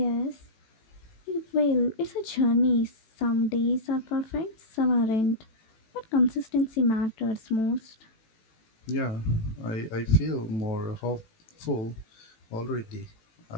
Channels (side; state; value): right; late; 18 ms